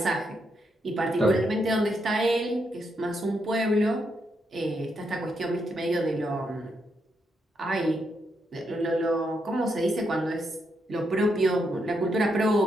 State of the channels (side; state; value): both; normal; correlation 0.80